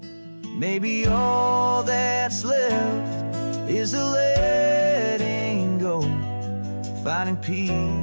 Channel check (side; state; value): both; inverted; correlation -1.00